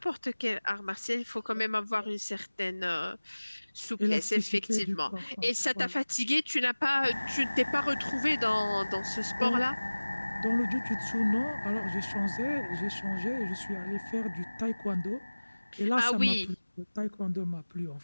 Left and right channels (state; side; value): inverted; both; correlation -1.00